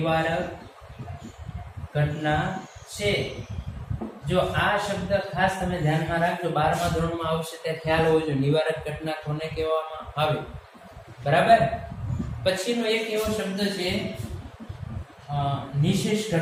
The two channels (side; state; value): both; identical; correlation 1.00